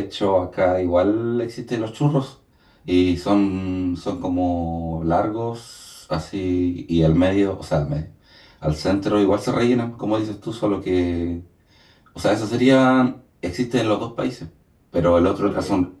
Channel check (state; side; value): identical; both; correlation 1.00